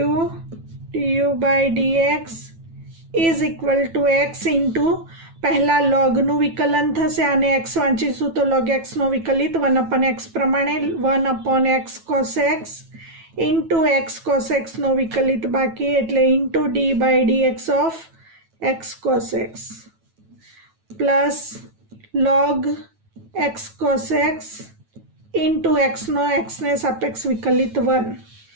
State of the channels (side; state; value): left; late; 9.1 ms